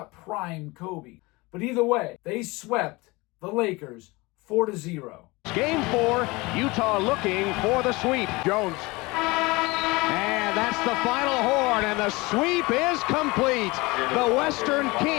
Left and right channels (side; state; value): right; quieter; 23.5 dB